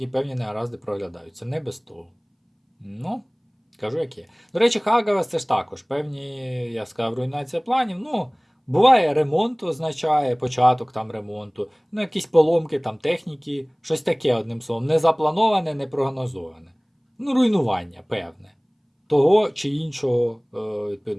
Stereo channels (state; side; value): identical; both; correlation 1.00